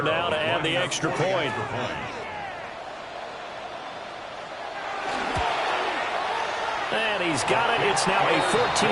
now to add the extra point. And he's got it. It's now a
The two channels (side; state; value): both; identical; correlation 1.00